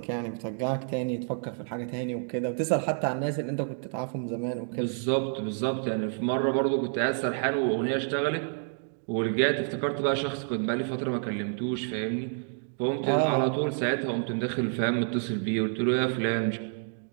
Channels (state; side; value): silent; left; 59 dB below the other